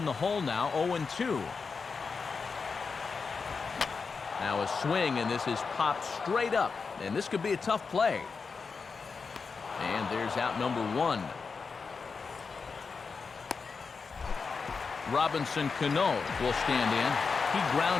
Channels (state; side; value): quieter; right; 5.0 dB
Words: the hole now. 0-2. Now a swing, and this is popped straight up, and this could be a tough play. And there's out number 1. Robinson Cano will stand in. He